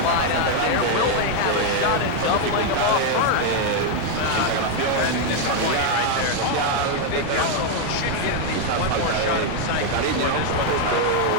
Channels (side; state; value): both; different; correlation 0.01